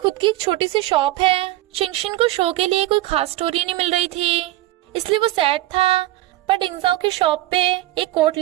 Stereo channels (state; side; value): quieter; left; 16.7 dB